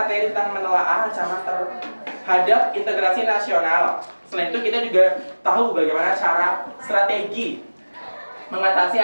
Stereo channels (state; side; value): inverted; both; correlation -1.00